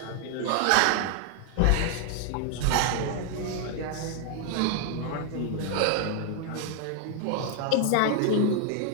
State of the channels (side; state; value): both; different; correlation 0.00